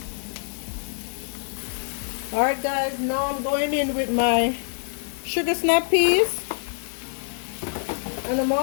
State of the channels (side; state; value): right; silent; digital silence